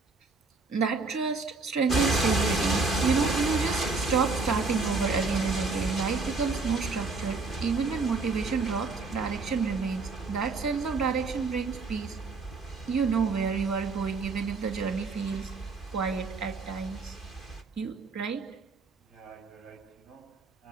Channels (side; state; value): left; quieter; 4.1 dB